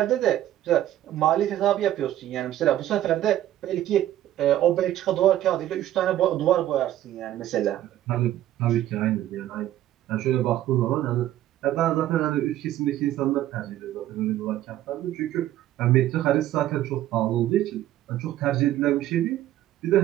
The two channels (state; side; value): quieter; left; 13.2 dB